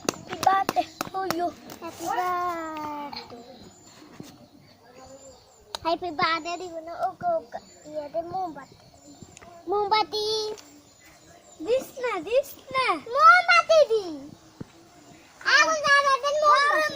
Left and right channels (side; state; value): both; identical; correlation 1.00